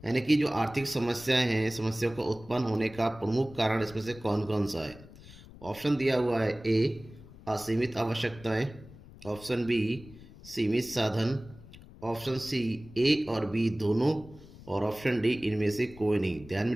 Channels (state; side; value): noise; left; rumble, 19 dB below the sound